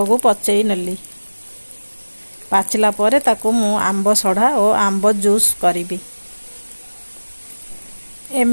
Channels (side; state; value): both; inverted; correlation -1.00